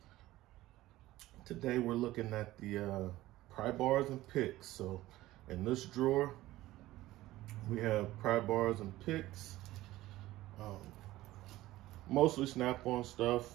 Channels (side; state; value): left; quieter; 16.5 dB